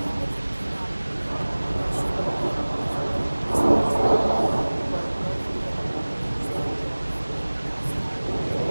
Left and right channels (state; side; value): inverted; both; correlation -1.00